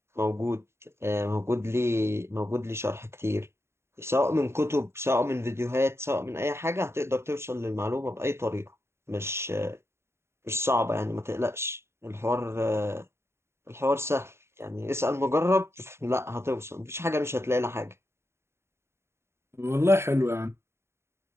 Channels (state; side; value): late; left; 0.12 ms